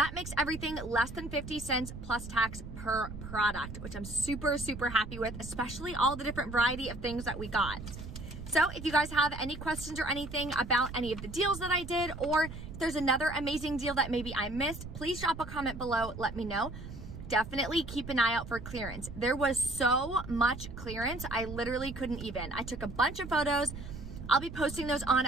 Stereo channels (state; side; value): noise; right; rumble, 11 dB below the sound